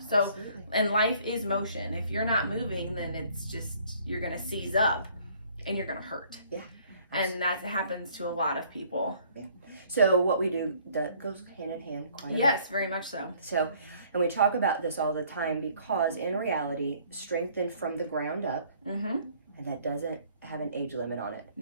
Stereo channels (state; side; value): inverted; both; correlation -0.59